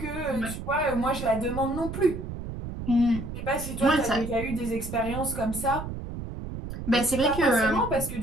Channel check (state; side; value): noise; right; rumble, 8 dB below the sound